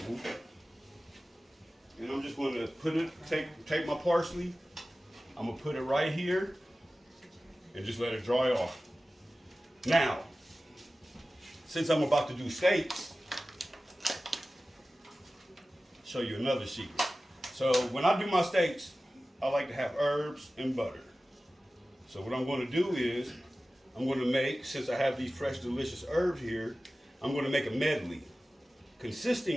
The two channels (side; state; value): both; normal; correlation 0.96